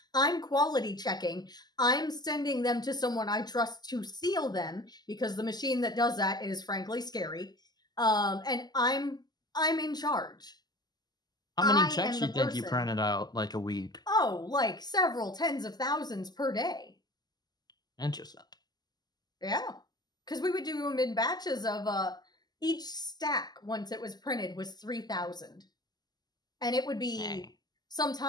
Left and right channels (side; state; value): right; late; 0.20 ms